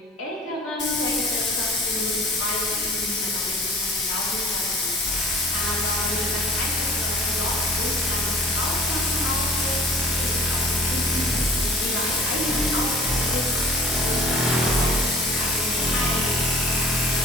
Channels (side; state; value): both; normal; correlation 0.46